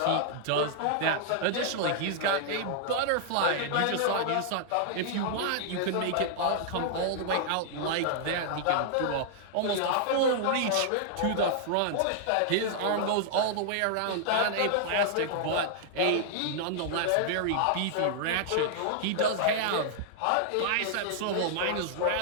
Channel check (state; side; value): different; both; correlation -0.01